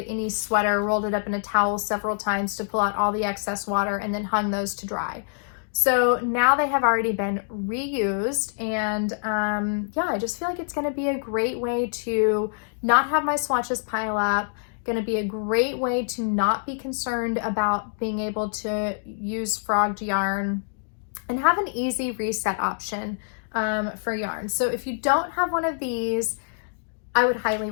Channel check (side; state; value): right; silent; digital silence